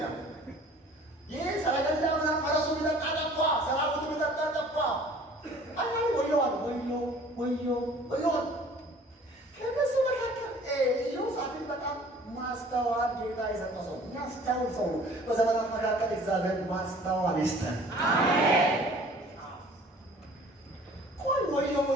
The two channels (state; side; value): normal; both; correlation 0.50